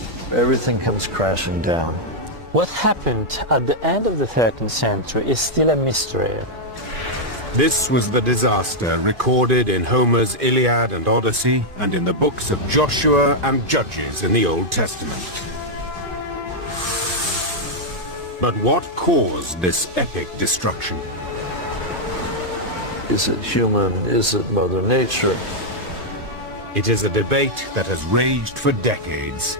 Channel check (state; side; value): late; left; 2.5 ms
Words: Everything comes crashing down. What happened at the end of the 13th century is still a mystery. This was the disaster recorded in Homer's Iliad and Odyssey, and in the books of Joshua and Judges in the Old Testament. But what caused this epic destruction? Is it human? Is it Mother Nature? It is a debate that has raged for decades.